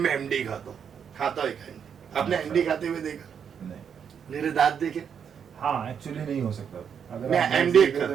एमडी खाता है। आपने एमडी खाते हुए देखा? नहीं। मेरे दांत देखे? हाँ, एक्चुअली नहीं हो सकता। अगर मैं आप एमडी तो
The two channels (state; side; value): quieter; left; 7.5 dB